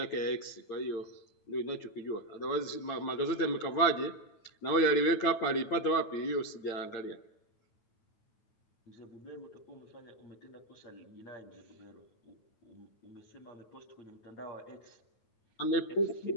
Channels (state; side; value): late; right; 8.8 ms